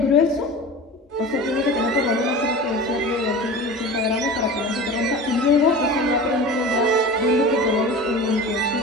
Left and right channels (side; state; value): both; normal; correlation 0.34